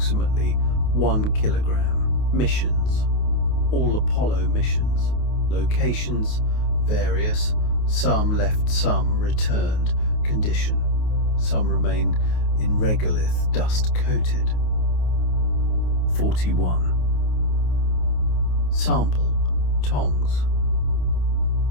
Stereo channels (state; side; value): late; right; 28 ms